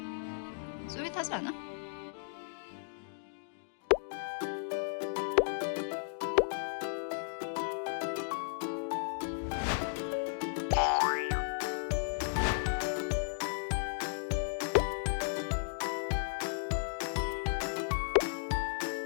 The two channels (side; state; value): right; silent; digital silence